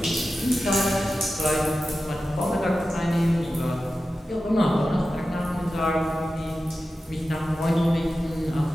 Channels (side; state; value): both; normal; correlation 0.93